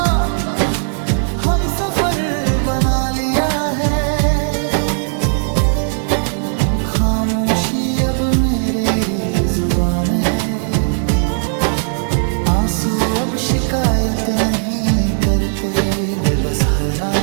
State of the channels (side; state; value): left; silent; 64 dB below the other